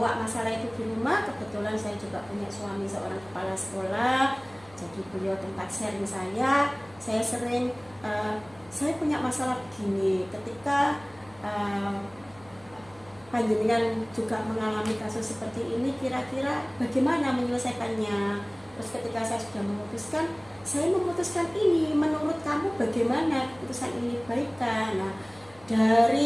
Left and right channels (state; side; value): noise; right; hum, 25 dB below the sound